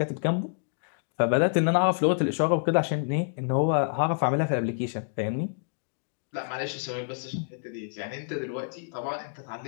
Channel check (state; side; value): silent; right; digital silence